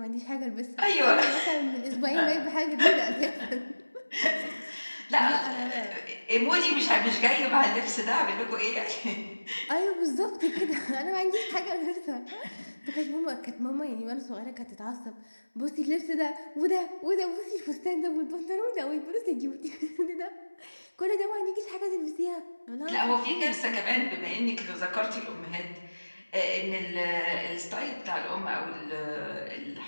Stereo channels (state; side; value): inverted; both; correlation -1.00